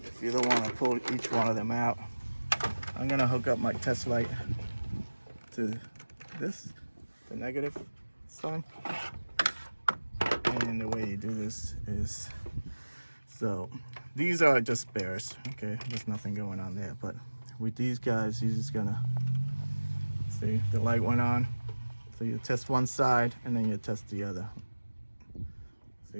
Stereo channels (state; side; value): inverted; both; correlation -1.00